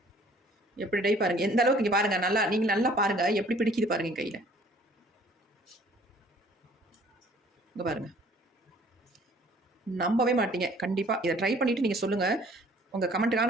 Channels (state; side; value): normal; both; correlation 0.55